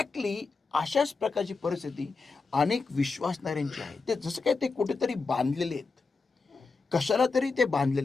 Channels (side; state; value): right; quieter; 4.3 dB